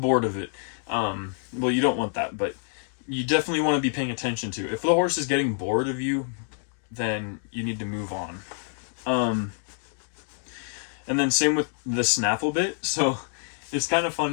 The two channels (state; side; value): silent; right; digital silence